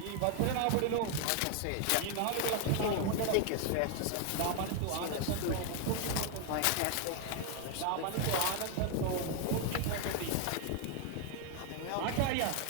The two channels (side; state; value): both; different; correlation 0.01